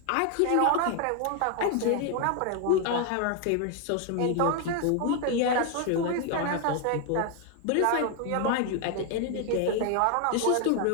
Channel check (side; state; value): both; different; correlation 0.00